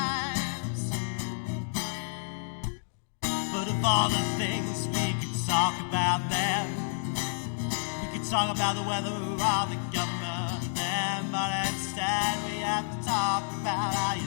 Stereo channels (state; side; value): silent; right; digital silence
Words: But of all the things we could talk about then, we could talk about the weather or the government then, but instead we have to talk about how